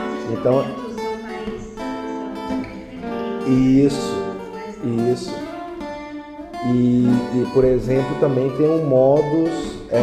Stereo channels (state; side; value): identical; both; correlation 1.00